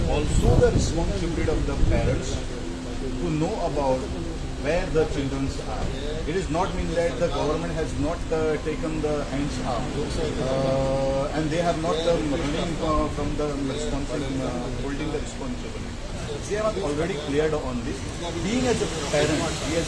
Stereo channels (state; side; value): identical; both; correlation 1.00